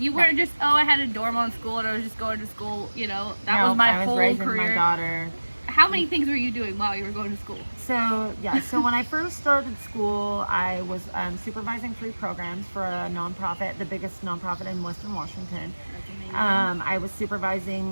weren't just, oh, I had a dorm on school and I was just going to school. You know, that was my I was whole raising career. my daughter. How many things were you doing while you were going to school? So when I first started school, I was supervising 3 programs for a nonprofit, the biggest nonprofit in Western Washington. That's amazing. I was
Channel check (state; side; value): inverted; both; correlation -1.00